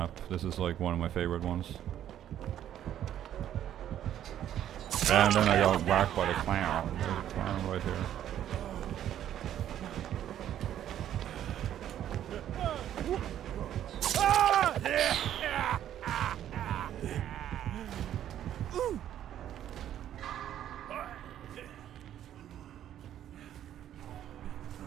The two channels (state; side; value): quieter; left; 11.1 dB